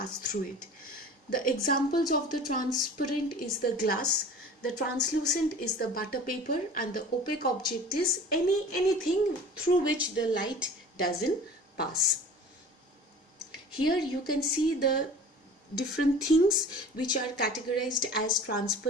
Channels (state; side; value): normal; both; correlation 0.42